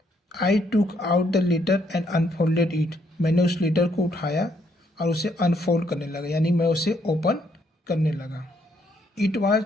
I took out the letter and unfolded it, मैंने उस लेटर को उठाया और उसे अनफोल्ड करने लगा, यानी मैं उसे ओपन करने लगा। It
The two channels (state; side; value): normal; both; correlation 0.72